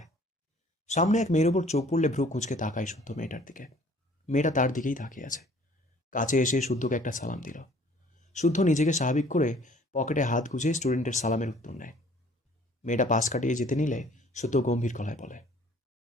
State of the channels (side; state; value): both; normal; correlation 0.55